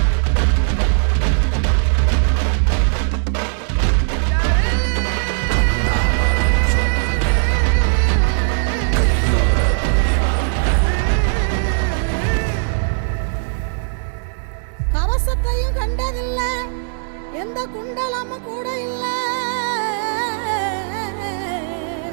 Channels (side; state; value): left; silent; 67 dB below the other